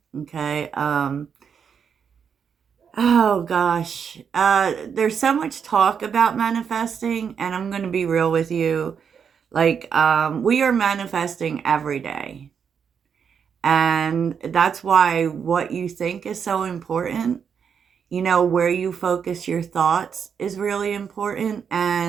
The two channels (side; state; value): left; quieter; 7.0 dB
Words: Okay. Oh gosh. There's so much talk about manifesting, and I'm going to be real with you. We are manifesting every day. And that's why what you think is so important. Where you focus your thoughts is really important.